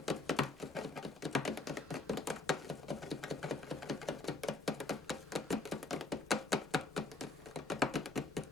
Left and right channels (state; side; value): quieter; right; 3.1 dB